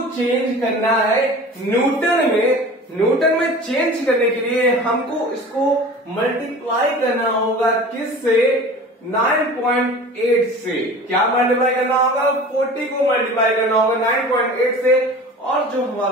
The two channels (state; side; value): normal; both; correlation 0.39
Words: चेंज करना है न्यूटन में। न्यूटन में चेंज करने के लिए हमको इसको मल्टीप्लाई करना होगा किससे? 9.8 से। क्या मल्टीप्लाई करना होगा? 40 को मल्टीप्लाई करना होगा 9.8 से, और जो